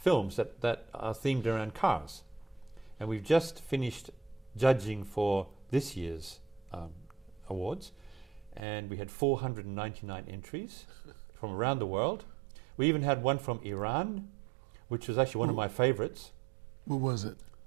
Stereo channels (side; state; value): left; drops out; at 8.6 s